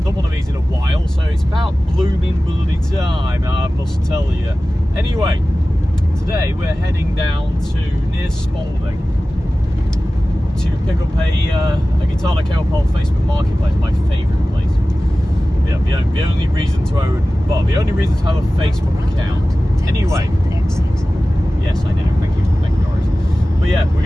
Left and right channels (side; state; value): both; normal; correlation 0.96